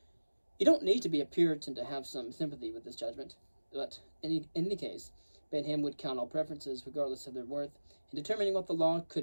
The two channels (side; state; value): both; inverted; correlation -1.00